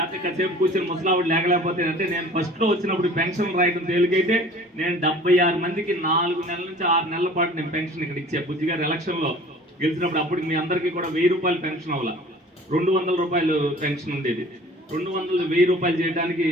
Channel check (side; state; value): both; normal; correlation 0.47